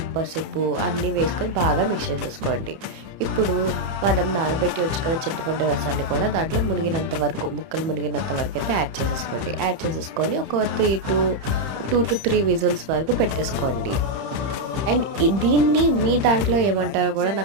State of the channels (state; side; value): late; left; 31 ms